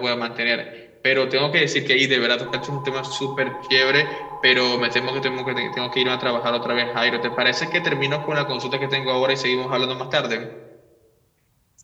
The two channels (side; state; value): both; identical; correlation 1.00